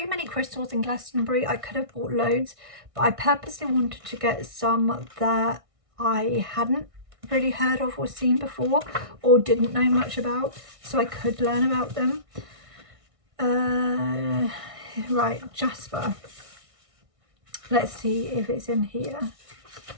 many crystals in Glastonbury. I could have bought loads, but I purposely wanted to get some that I hadn't really heard of or seen before or didn't know much about, so I could learn about them. Right, Jasper. Let's see if it's in here.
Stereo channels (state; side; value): late; left; 1.6 ms